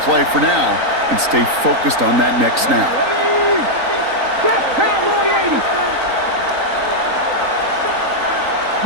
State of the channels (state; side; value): late; left; 3.9 ms